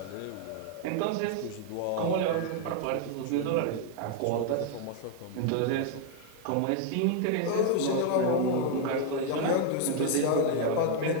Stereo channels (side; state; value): both; different; correlation 0.00